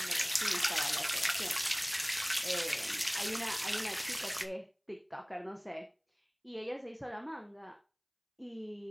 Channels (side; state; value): both; identical; correlation 1.00